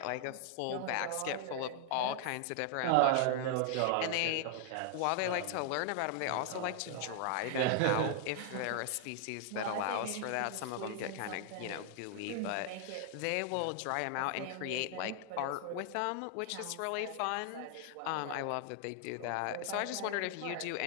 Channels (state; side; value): different; both; correlation 0.00